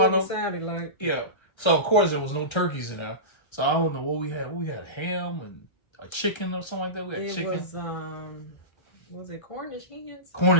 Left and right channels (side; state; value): right; late; 1.3 ms